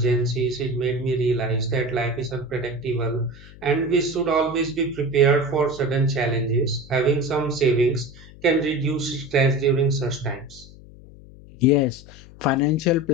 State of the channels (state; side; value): noise; left; hum, 20 dB below the sound